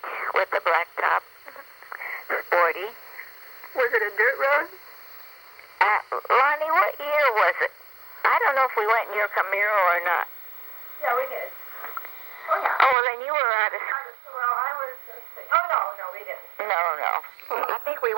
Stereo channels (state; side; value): drops out; left; at 13.0 s